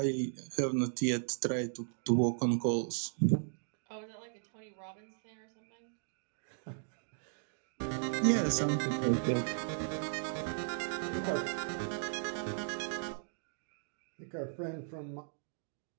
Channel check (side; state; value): left; silent; digital silence